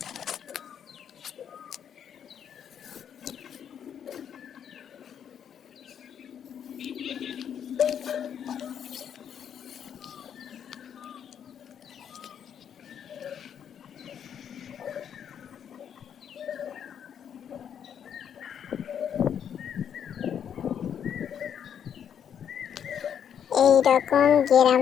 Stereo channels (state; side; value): quieter; right; 8.6 dB